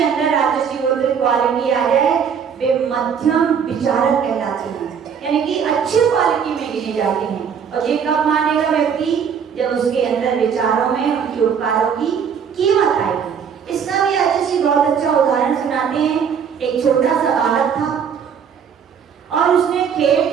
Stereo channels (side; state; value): left; quieter; 7.2 dB